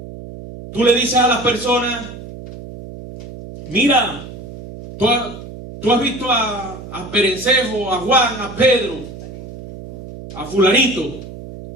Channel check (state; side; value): noise; right; hum, 13 dB below the sound